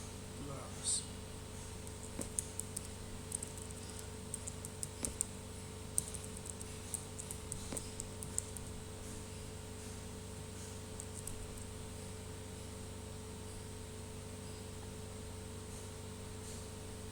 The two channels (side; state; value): both; identical; correlation 1.00